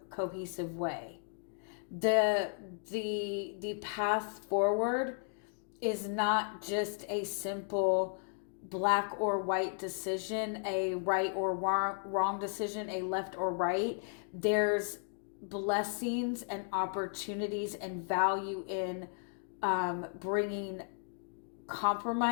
cohesive way. The path forward is not just a simple black or white decision, a right or wrong decision, a left or right. There's blessings and opportunities and value in bringing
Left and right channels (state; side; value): silent; right; 55 dB below the other